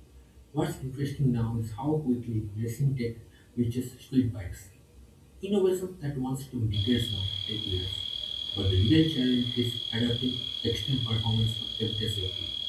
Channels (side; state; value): both; identical; correlation 1.00